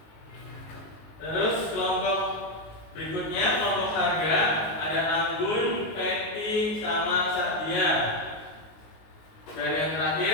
Terus kelompok berikutnya kelompok harga ada Anggun, Peti, sama Sadia. Dan yang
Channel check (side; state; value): right; late; 19 ms